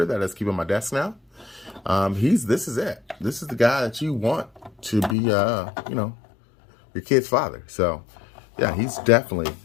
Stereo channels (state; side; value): drops out; right; at 5.2 s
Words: that is keeping my desk now. This is it. This is the guy that you want to be, your kid's father. So, yeah, he's definitely